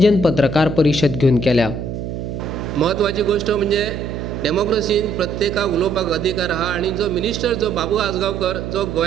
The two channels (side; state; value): right; noise; hum, 6 dB below the sound